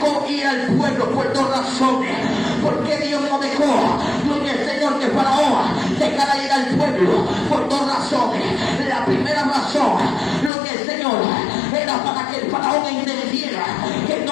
ir al pueblo por dos razones. ¿Por qué Dios no dejó, gloria al Señor, que Faraón dejara ir al pueblo? Por dos razones. La primera razón, gloria al Señor, era para que el Faraón entendiera que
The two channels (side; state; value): right; drops out; at 10.5 s